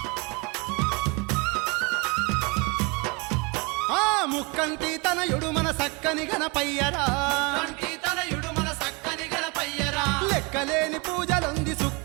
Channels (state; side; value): quieter; left; 28.4 dB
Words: ఆ ముక్కంటి తనయుడు మన సక్కని గణపయ్యరా కంటి తనయుడు మన సక్కని గణపయ్యరా లెక్కలేని పూజలుంది